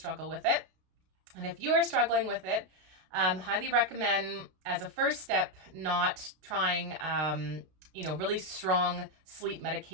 with it. And if you are struggling with it, highly recommend as a first step not trying really strong sleep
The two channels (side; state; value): left; late; 32 ms